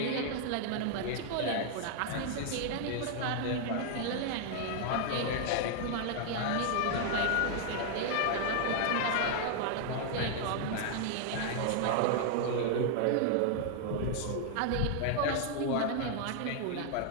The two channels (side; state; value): both; different; correlation 0.00